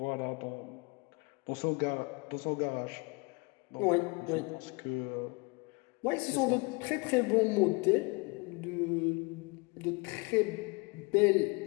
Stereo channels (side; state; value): right; quieter; 28.7 dB